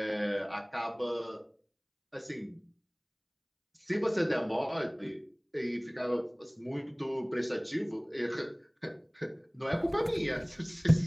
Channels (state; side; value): identical; both; correlation 1.00